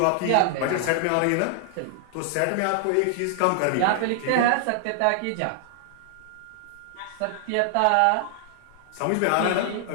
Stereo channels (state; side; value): different; both; correlation 0.00